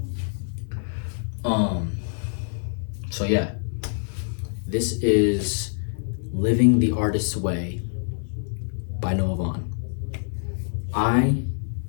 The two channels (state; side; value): silent; right; digital silence